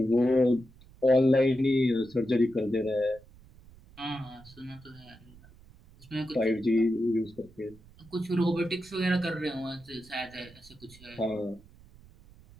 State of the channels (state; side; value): noise; right; rumble, 24 dB below the sound